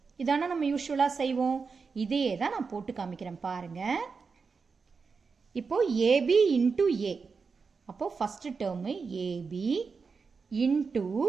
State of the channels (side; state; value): left; quieter; 5.0 dB